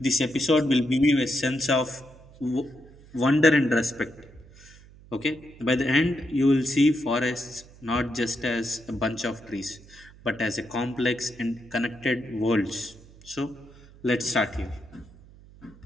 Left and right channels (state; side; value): noise; right; hum, 22 dB below the sound